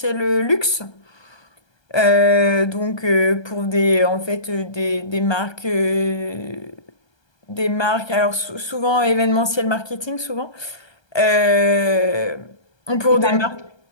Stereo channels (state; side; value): late; right; 1.3 ms